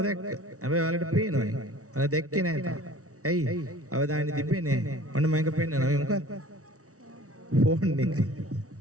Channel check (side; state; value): left; late; 0.64 ms